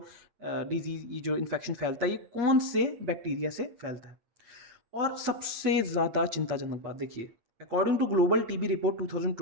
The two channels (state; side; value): late; left; 8.6 ms